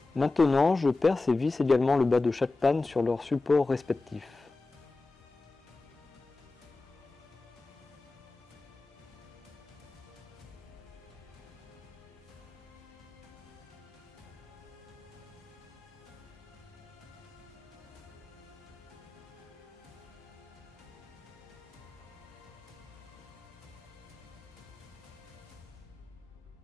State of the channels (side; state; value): right; quieter; 3.4 dB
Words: Maintenant, je perce et visse également le bas de chaque panne sur leurs supports respectifs.